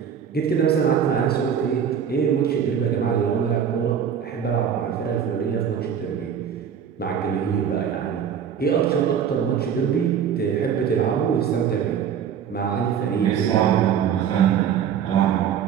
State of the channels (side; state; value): left; quieter; 8.1 dB